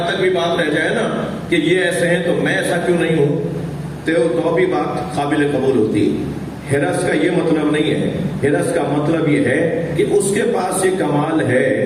تک بھی بات رہ جائے نا کہ یہ ایسے ہیں تو میں ایسا کیوں نہیں ہوں، تو بھی بات قابل قبول ہوتی۔ حرص کا یہ مطلب نہیں ہے، حرص کا مطلب یہ ہے کہ اس کے پاس یہ کمال ہے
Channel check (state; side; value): identical; both; correlation 1.00